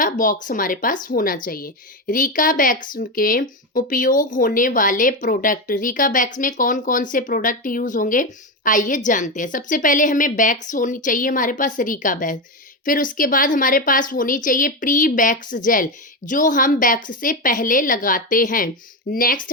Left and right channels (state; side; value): normal; both; correlation 0.13